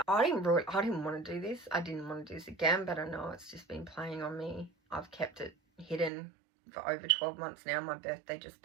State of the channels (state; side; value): drops out; left; at 6.1 s